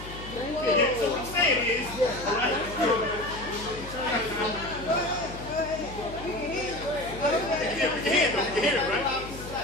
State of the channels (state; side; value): noise; left; hum, 13 dB below the sound